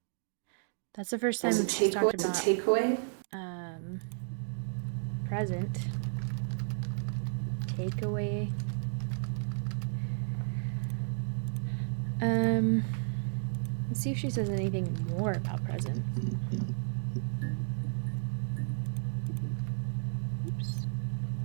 That's the first time she's talked about takeaway. Present. Takeaway. Let's see if she says anything more about present. Oops.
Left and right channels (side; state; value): left; silent; digital silence